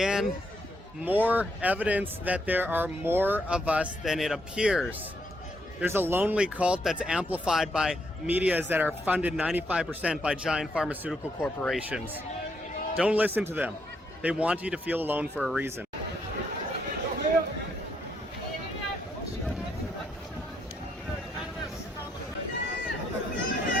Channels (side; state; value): both; normal; correlation 0.76